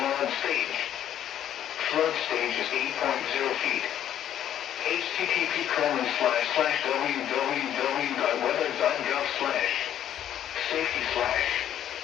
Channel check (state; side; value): quieter; right; 10.7 dB